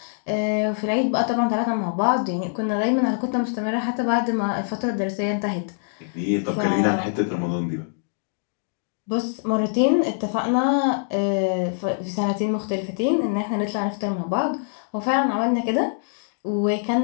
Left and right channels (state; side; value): silent; right; digital silence